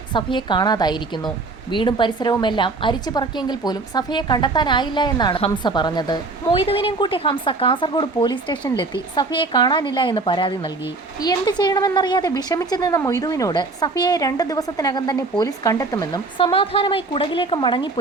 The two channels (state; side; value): quieter; left; 3.6 dB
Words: സഫിയെ കാണാതായിരിക്കുന്നു. വീടും പരിസരവുമെല്ലാം അരിച്ചു പറക്കിയെങ്കിൽ പോലും സഫിയെ കണ്ടെത്താനായില്ല എന്നാണ് ഹംസ പറഞ്ഞത്. മൊയ്തുവിനെയും കൂട്ടി ഹംസ കാസർഗോഡ് പോലീസ് സ്റ്റേഷനിലെത്തി സഫിയെ കാണാനില്ല എന്ന് പരാതി നൽകി. എന്ത് ചെയ്യണമെന്നറിയാതെ വിഷമിച്ചു നിന്ന മൊയ്തുവിനോട് സഫിയയെ 2 ദിവസത്തിനകം തന്നെ പോലീസ് കണ്ടെത്തുമെന്നും സമാധാനമായി കുടകിലേക്ക്